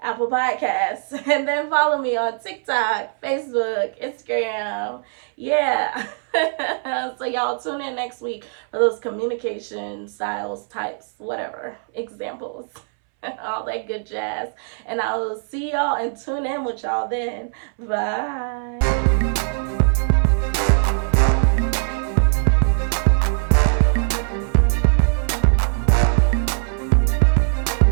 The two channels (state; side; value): silent; left; 63 dB below the other